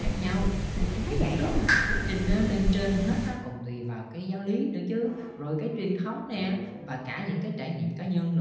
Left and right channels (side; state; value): both; identical; correlation 1.00